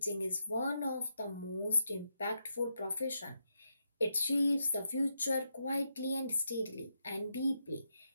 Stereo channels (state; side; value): inverted; both; correlation -0.83